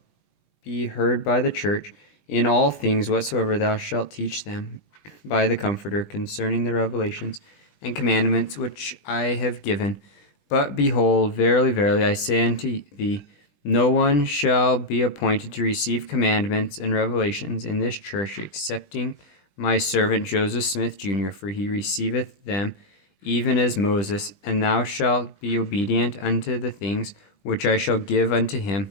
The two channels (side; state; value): right; late; 20 ms